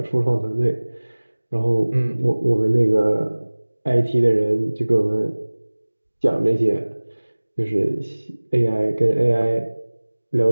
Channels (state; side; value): inverted; both; correlation -1.00